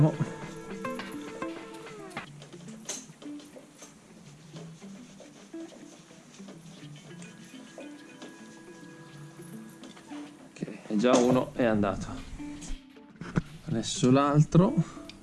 Ok, già uno è andato. Adesso l'altro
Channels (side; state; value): both; identical; correlation 1.00